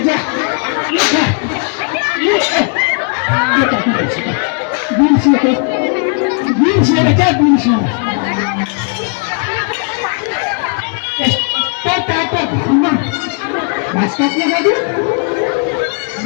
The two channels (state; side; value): quieter; right; 39.9 dB